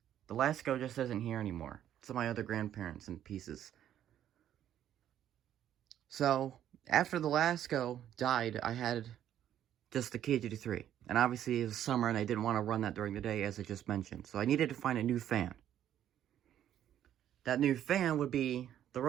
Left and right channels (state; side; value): quieter; left; 10.9 dB